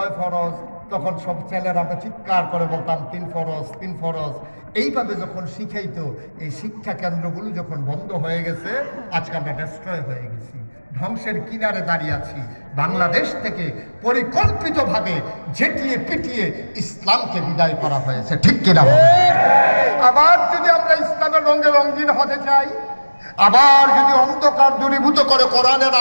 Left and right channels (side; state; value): both; inverted; correlation -1.00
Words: ফরজ, তখন সব ছেলেরা আমরা চিৎকার করে বলতাম 3 ফরজ 3 ফরজ। এইভাবে যখন শিখাইতো, এই শিক্ষা কেন্দ্রগুলো যখন বন্ধ হয়ে গেছে, আজকে আমরা ডেস্ট্রয় হয়ে গেছি, ধ্বংসের কিনারে দাঁড়িয়ে আছি। বাংলাদেশ থেকে পরিকল্পিতভাবে ঝেঁটিয়ে পিটিয়ে ইসলামকে বিদায় করা হয়েছে, ঠিক কিনা? আবার যদি আমরা ইসলামের রঙে রঙিন হতে চাই, আবার যদি অন্ধকার দূরীভূত করে কোরআনের